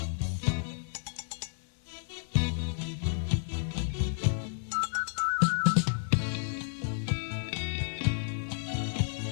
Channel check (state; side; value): silent; right; 57 dB below the other